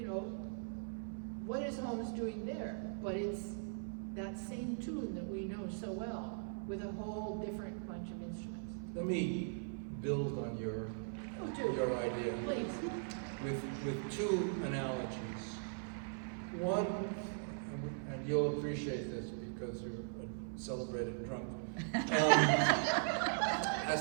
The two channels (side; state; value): left; silent; 51 dB below the other